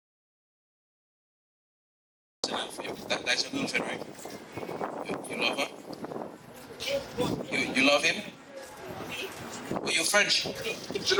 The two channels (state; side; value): identical; both; correlation 1.00